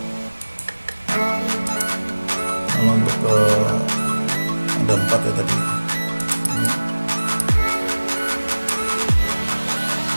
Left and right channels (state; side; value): inverted; both; correlation -1.00